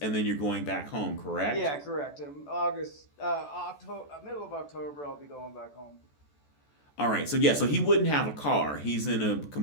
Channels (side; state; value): right; late; 14 ms